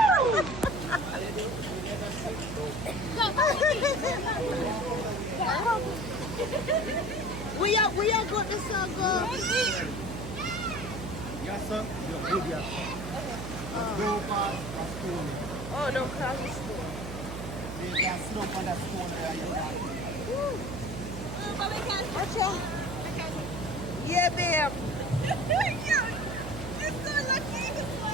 we are good to go. Yes, sir. You're good, yes. Go past the stone. Oh, don't cross the stone. There's that slope on that stone there. Watch out. Yeah, babe. You're so lucky.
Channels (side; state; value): right; noise; hum, 8 dB below the sound